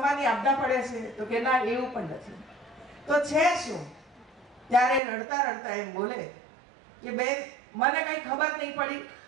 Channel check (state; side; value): drops out; left; at 5.0 s